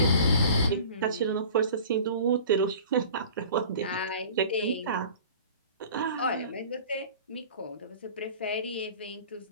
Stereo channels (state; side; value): inverted; both; correlation -0.43